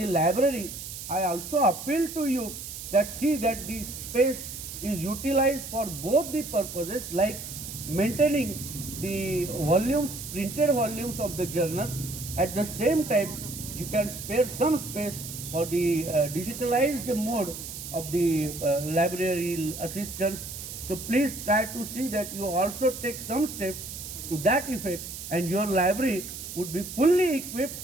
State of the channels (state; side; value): noise; right; hiss, 9 dB below the sound